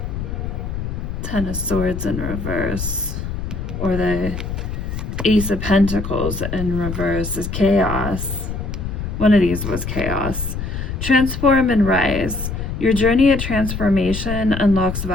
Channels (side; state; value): left; noise; rumble, 5 dB below the sound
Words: Ten of Swords in reverse, or the Ace of Pentacles in reverse is chaos. One of these was chaos. Transform and rise. Your journey of transformation unlocks